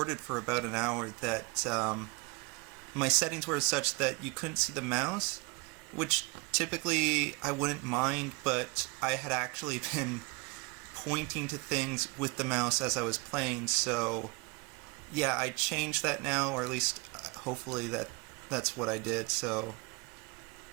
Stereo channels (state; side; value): quieter; left; 28.8 dB